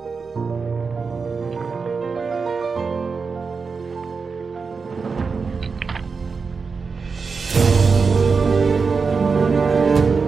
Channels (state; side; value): quieter; left; 5.0 dB